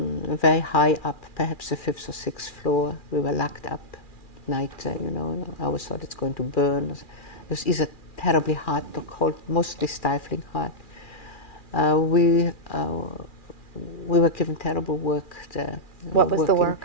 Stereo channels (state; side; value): late; right; 2.4 ms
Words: very high up, perhaps the 5th or 6th floor. We were locked up at night, you know. I always thought it's going to burn. It was either terribly hot or cold, mostly stifling hot. We were given terrible work there. What was the work?